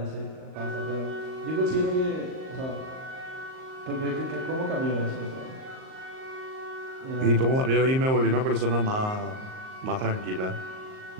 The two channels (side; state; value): left; late; 38 ms